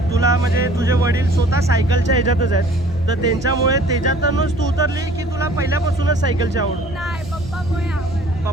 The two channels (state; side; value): noise; right; hum, 16 dB below the sound